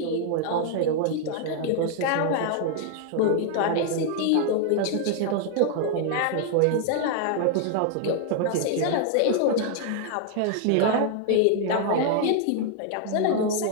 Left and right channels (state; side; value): different; both; correlation 0.00